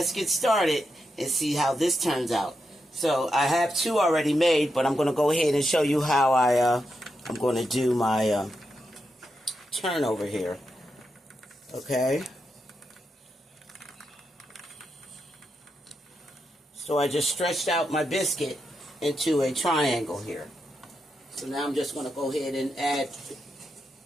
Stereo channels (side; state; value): both; normal; correlation 0.85